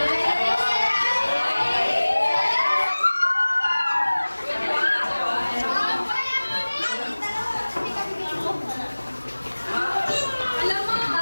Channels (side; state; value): both; inverted; correlation -1.00